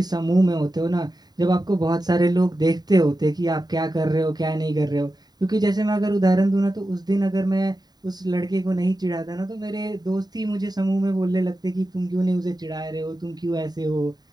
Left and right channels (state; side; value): late; left; 0.20 ms